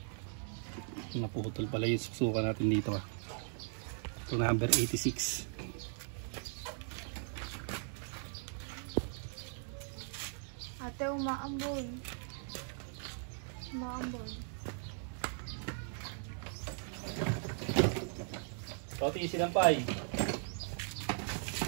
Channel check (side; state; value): left; silent; 52 dB below the other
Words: Naputol pala yung susukan natin dito. Ito number 86. Ate, umaambon. Umaambon. So, tiisin ang pay.